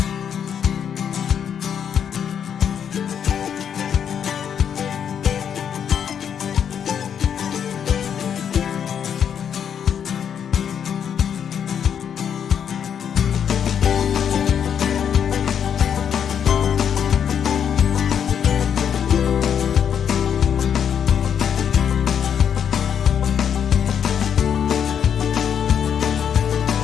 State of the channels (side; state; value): right; quieter; 8.2 dB